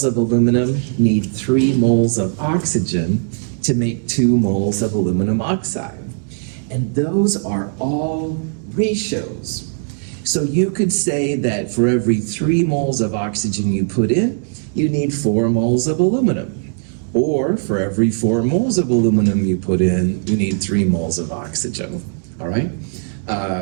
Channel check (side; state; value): left; silent; digital silence